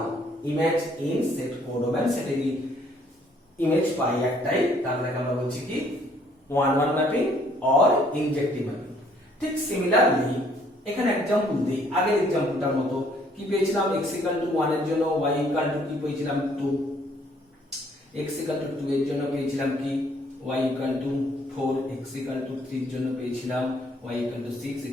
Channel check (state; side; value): normal; both; correlation 0.64